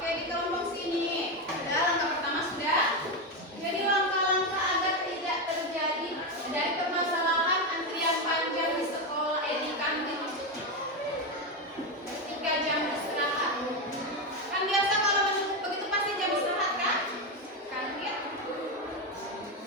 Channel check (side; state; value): both; normal; correlation 0.11